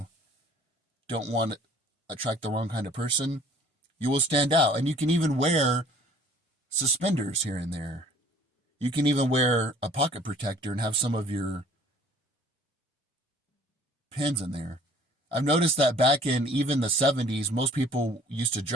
don't want to attract the wrong kind of person. You will stand out. And you can even wear suspenders here and there. You can even wear a pocket protector and have some of your pins in there. I've noticed that back in even the 70s, most people used to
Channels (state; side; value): normal; both; correlation 0.54